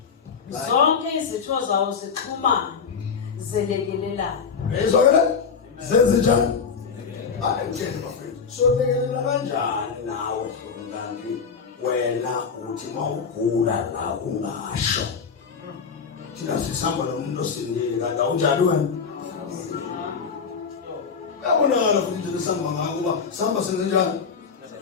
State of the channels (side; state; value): right; quieter; 5.9 dB